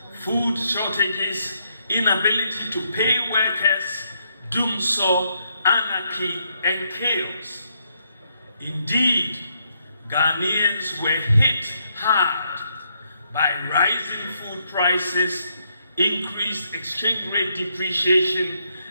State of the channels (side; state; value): both; inverted; correlation -0.76